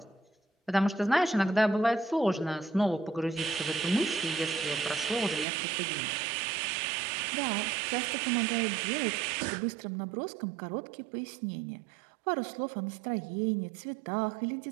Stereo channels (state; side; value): drops out; left; at 5.5 s